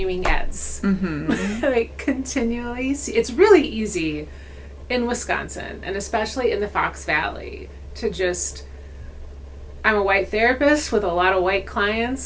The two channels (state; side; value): identical; both; correlation 1.00